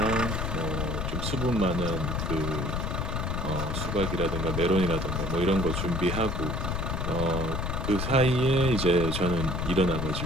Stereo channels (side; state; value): left; noise; rumble, 1 dB below the sound